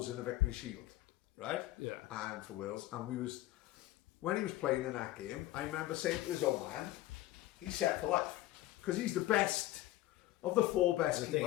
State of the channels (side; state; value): right; quieter; 15.9 dB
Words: in the Victory Shield, right? Yeah. And for Wales, and when he was playing in that game, I remember saying to his old man, he's set for life, because he's the best of the four best